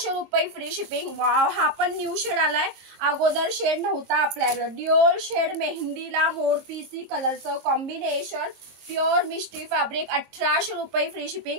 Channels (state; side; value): late; left; 22 ms